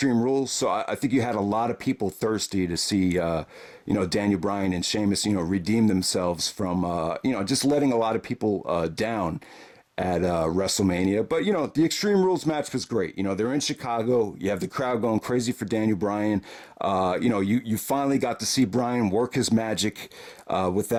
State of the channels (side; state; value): both; identical; correlation 1.00